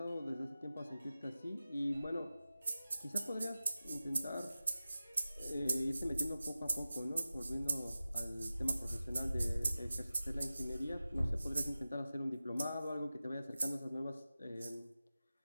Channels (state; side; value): inverted; both; correlation -0.95